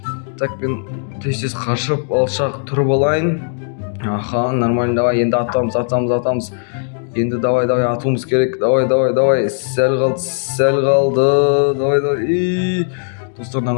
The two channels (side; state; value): right; silent; digital silence